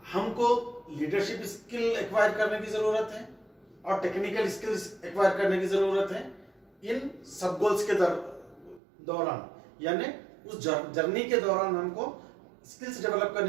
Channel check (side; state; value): left; drops out; at 8.8 s